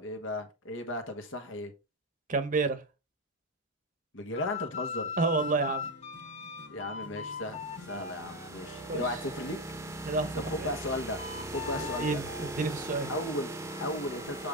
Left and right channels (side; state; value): both; normal; correlation 0.10